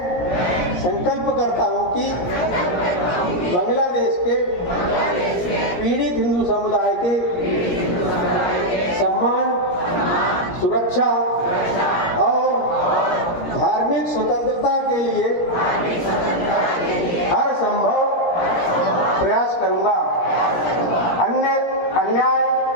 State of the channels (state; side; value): late; right; 17 ms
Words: संकल्प करता हूँ कि बांग्लादेश के पीड़ित हिंदू समुदाय के सम्मान, सुरक्षा और धार्मिक स्वतंत्रता के लिए हर संभव प्रयास करूंगा। अन्याय